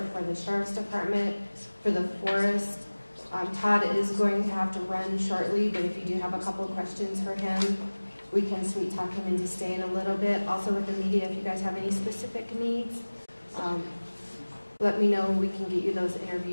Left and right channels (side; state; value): both; inverted; correlation -1.00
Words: for the Sheriff's Department, for the forest, Todd is going to have to run shortly, but if you do have a couple of questions for him, we can sweet talk him into staying a little bit. Also with the media, if you guys have any specific needs, let me know. We can get you those